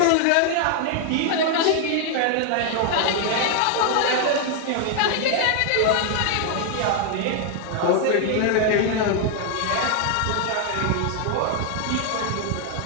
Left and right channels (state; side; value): different; both; correlation 0.00